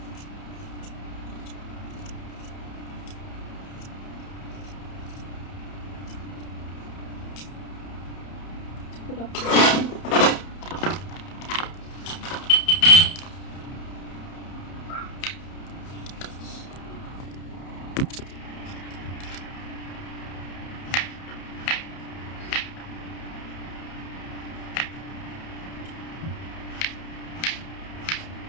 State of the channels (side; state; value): right; late; 31 ms